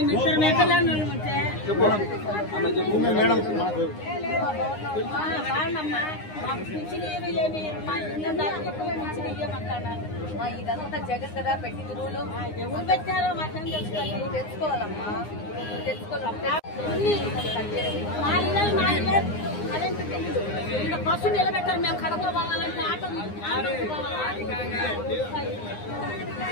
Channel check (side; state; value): right; late; 9.7 ms